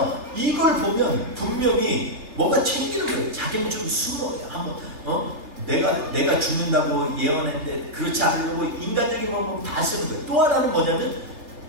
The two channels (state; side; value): late; left; 3.3 ms